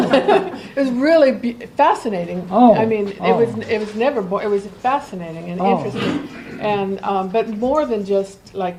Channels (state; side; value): identical; both; correlation 1.00